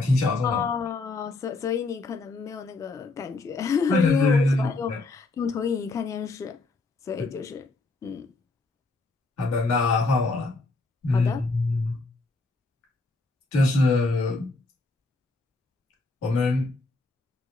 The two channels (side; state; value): right; quieter; 3.3 dB